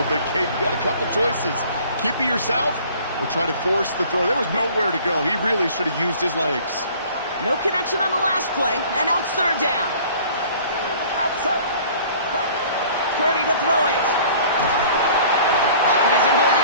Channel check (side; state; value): both; inverted; correlation -0.50